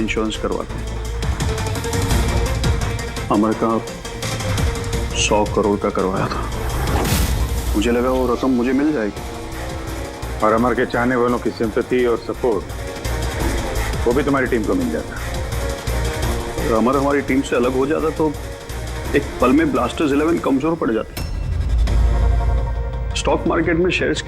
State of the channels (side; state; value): both; identical; correlation 1.00